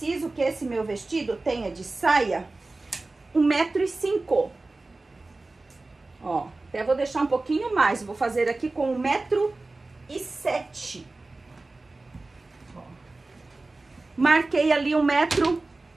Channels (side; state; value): left; quieter; 3.2 dB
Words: que esse meu vestido tenha de saia 1,5 m. Ó, até vou deixar um pouquinho mais, vou fazer aqui com 1,7 m. Marquei ali